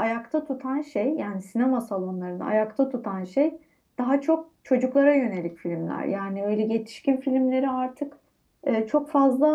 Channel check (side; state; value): both; identical; correlation 1.00